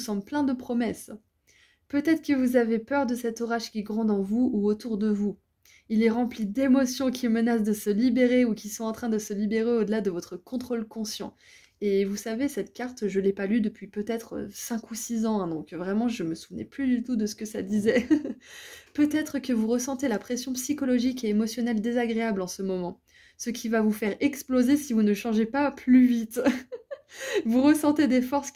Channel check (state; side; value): identical; both; correlation 1.00